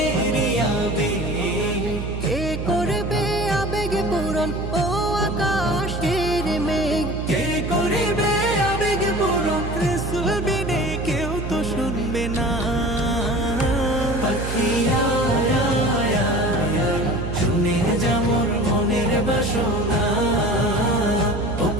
আবেগ। কে করবে আবেগ পূরণ ও আকাশের মেঘ? কে করিবে আবেগ পূরণ, রসুল বিনে কেউ তো শুনবে না। পাখি আয় আয় আয় আয়, শুনে যা মোর মনের বাসনা। ও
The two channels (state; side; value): noise; right; hum, 5 dB below the sound